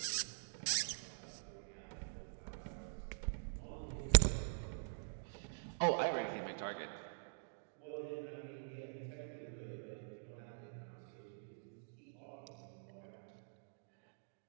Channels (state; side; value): silent; left; digital silence